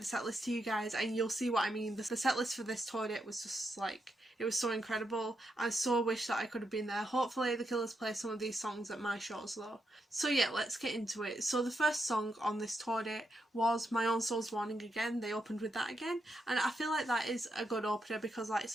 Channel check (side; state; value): both; normal; correlation 0.82